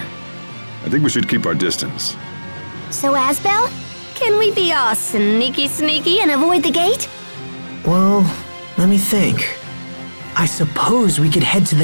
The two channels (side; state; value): both; inverted; correlation -1.00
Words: I think we should keep our distance. So, Asbel, can we be all sneaky and avoid the gate? Well, let me think. I suppose we could head to